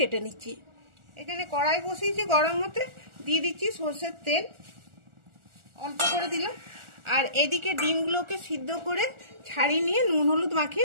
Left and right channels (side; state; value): left; late; 1.4 ms